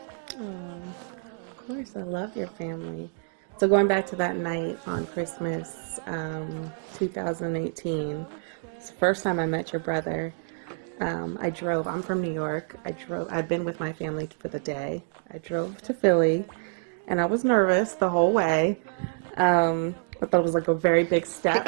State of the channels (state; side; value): silent; left; 60 dB below the other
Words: Oh, of course, I love your family. So going back to that night on Christmas, 2018, it's the first time I met your brother. I drove. I'm from New York. I've been with my family for the day. I drove to Philly, and I was nervous the whole way. I thought it was like a very big